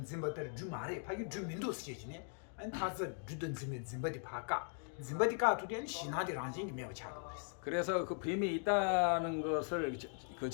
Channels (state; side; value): silent; right; 51 dB below the other